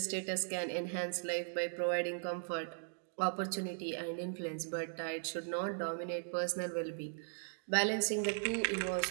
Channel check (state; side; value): silent; left; digital silence